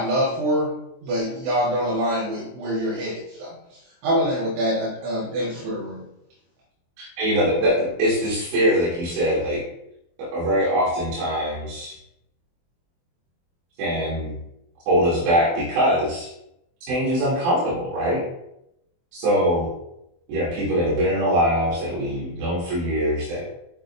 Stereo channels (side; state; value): left; late; 23 ms